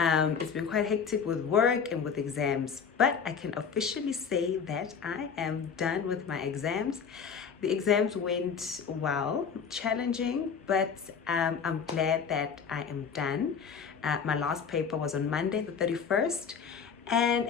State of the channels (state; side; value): quieter; right; 6.5 dB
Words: been quite hectic with work and with exams, but I can officially say that I am done with my exams. The exams went well, challenging, but I'm glad that I am done. My last paper was on Monday, the 31st. And